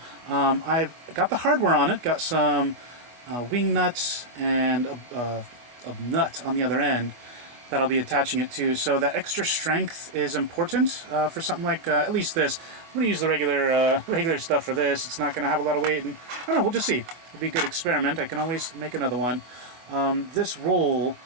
I've got the hardware on it, got some wing nuts and a nut on the other end that I'll be attaching it to. So that extra strength is important for something like at least this. I'm going to use the regular stuff for this. It's not going to have a lot of weight, and I don't know. We'll just see. It'll be a good experiment. I can always make another one. This roll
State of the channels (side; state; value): left; late; 25 ms